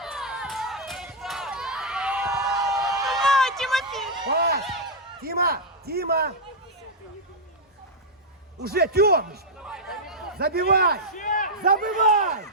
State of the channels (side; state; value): both; normal; correlation -0.05